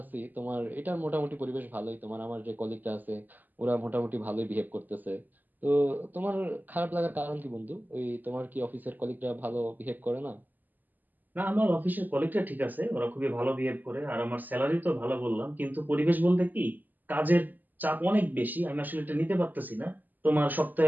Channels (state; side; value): late; left; 0.086 ms